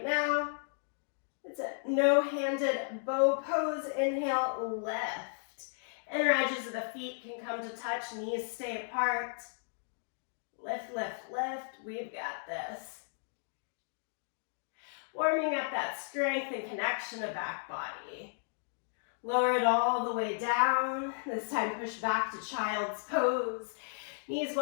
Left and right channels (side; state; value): right; silent; digital silence